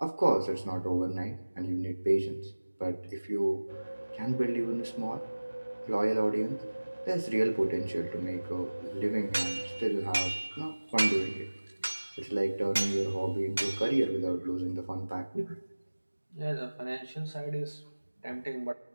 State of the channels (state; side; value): inverted; both; correlation -1.00